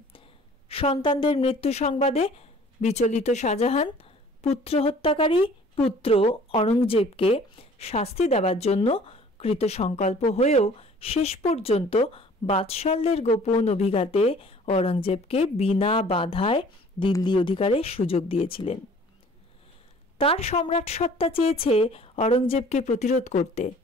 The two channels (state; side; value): normal; both; correlation 0.51